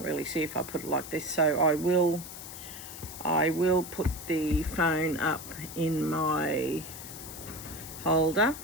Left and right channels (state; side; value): noise; left; hiss, 12 dB below the sound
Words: really see if I put it like this, so I will put the phone up in my holder